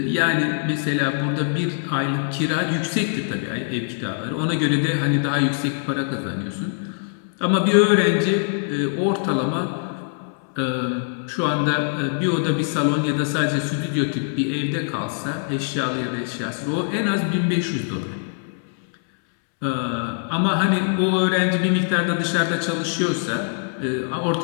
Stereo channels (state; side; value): silent; right; 64 dB below the other